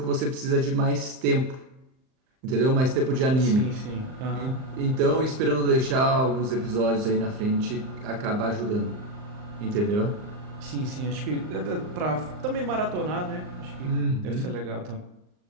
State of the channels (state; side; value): late; left; 39 ms